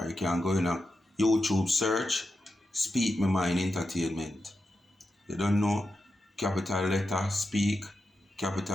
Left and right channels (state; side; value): normal; both; correlation 0.89